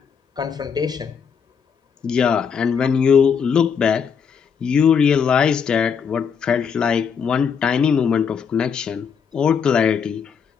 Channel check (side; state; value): right; quieter; 6.7 dB